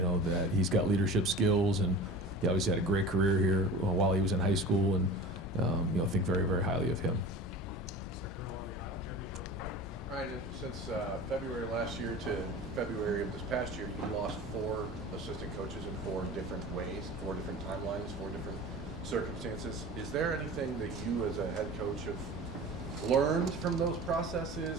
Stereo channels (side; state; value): both; normal; correlation 0.37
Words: he's got leadership skills, and he obviously had a great career here while he was in high school, and, think very, very highly of him. Ryan, since February last year to February of this past year, you lost 4 assistant coaches in 4 different ways, 4 different timelines, 4 different circumstances. Is there anything that you as a head coach have learned from those